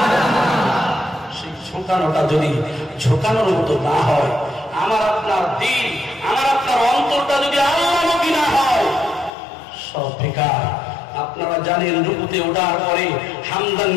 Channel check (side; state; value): right; drops out; at 9.3 s